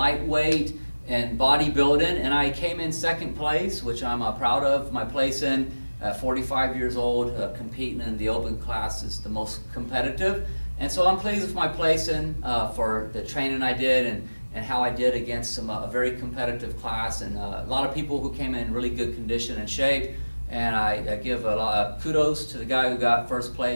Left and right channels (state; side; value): inverted; both; correlation -1.00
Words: in bodybuilding, and I came in second place, which I'm proud of my place in. 45 years old, competing in the open class is the most competitive. And so I'm pleased with my placing for the training I did and how I did against a very competitive class, and a lot of people who came in really good condition and shape. And I give a lot of kudos to the guy who got first